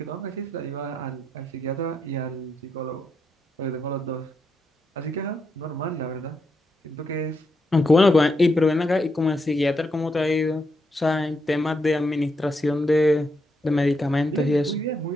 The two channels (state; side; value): normal; both; correlation 0.81